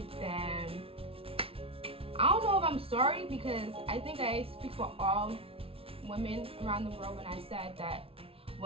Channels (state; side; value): late; left; 0.27 ms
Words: then I don't know if I'm sorry, because I think I speak for all women around the world when I said that